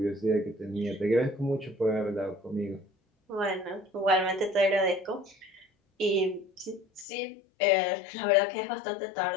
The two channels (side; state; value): right; drops out; at 7.1 s